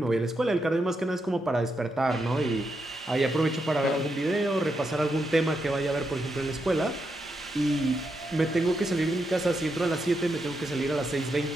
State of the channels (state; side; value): normal; both; correlation 0.83